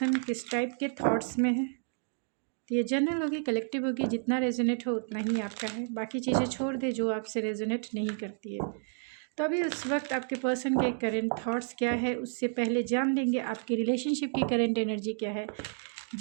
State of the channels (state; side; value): silent; left; 57 dB below the other